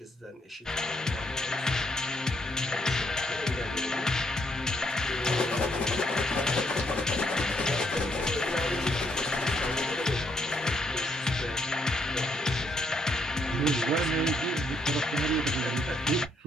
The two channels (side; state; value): both; normal; correlation 0.74